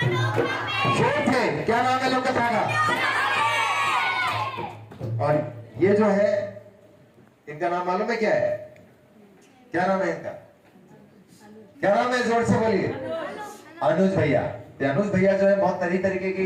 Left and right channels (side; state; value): both; identical; correlation 1.00